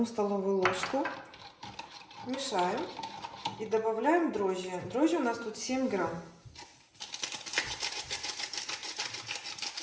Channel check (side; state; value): both; identical; correlation 1.00